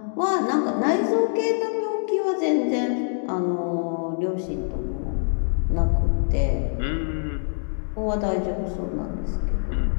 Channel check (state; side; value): silent; right; digital silence